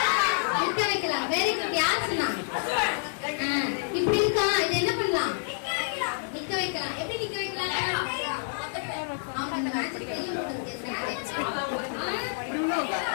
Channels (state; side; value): silent; right; 59 dB below the other